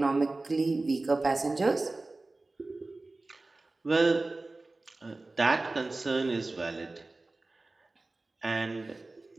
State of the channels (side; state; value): left; quieter; 3.2 dB